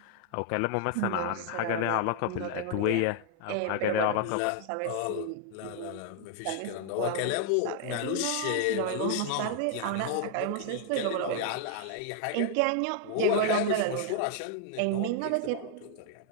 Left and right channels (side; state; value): both; different; correlation 0.00